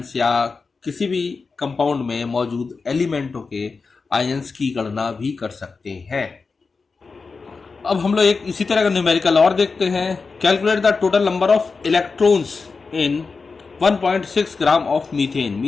या किसी भी कंपाउंड में मौजूद एलिमेंटों के आयंस की गणना भी कर सकते हैं। अब हम लोग एक इसी तरह का न्यूमेरिकल और देखते हैं। Calculate the total number of electrons in 1.6 gram of methane.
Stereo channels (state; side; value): quieter; right; 4.5 dB